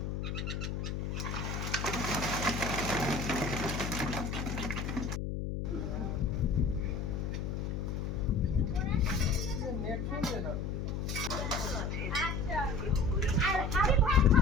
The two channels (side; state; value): left; noise; hum, 2 dB below the sound